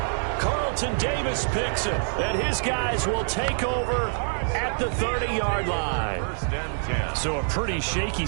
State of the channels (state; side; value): silent; left; 61 dB below the other